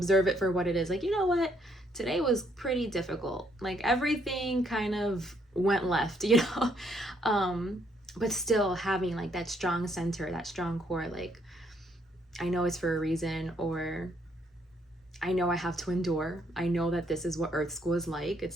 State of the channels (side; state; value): both; normal; correlation 0.71